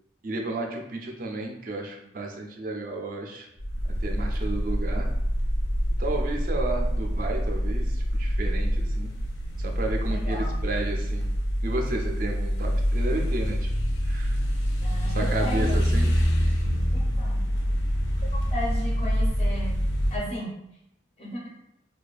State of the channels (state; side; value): normal; both; correlation 0.89